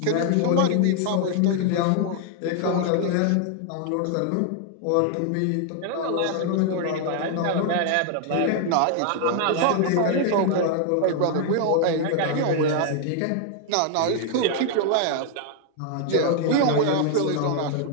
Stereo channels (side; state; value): both; different; correlation 0.00